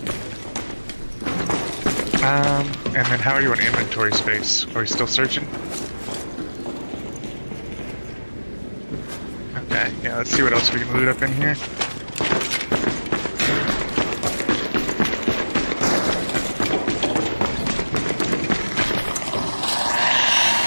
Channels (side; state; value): both; inverted; correlation -1.00